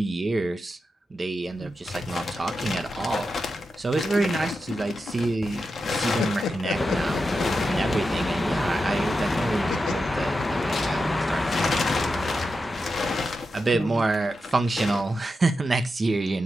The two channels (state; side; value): normal; both; correlation 0.89